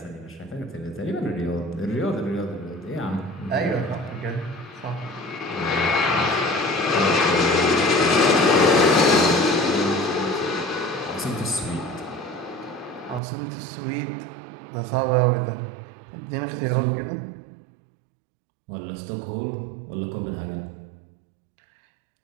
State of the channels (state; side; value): drops out; left; at 13.2 s